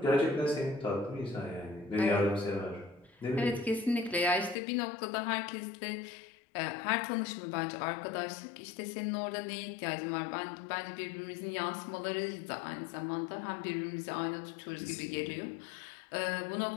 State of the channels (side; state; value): right; drops out; at 4.5 s